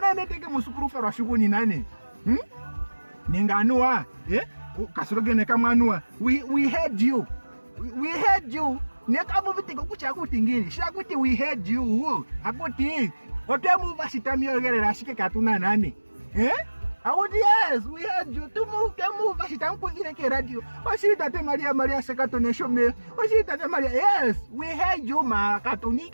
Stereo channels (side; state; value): both; inverted; correlation -1.00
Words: neteke musukuru fa rasho kunyi nane ninganua kasirogene kamwanua we heard you nekabu vitiko kucha kutingini shakuti we heard you akuti otemu vasitamiyogerera shike katuna nane akuti yes we heard you temu vasitamkuzire ke radio wasitate maria sekatone shome wasitate maria yes we heard you ma